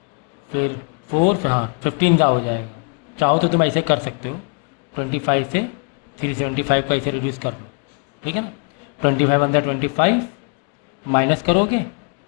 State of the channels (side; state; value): right; quieter; 37.1 dB